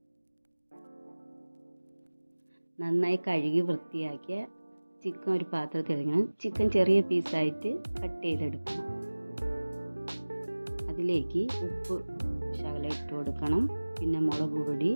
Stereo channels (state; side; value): inverted; both; correlation -1.00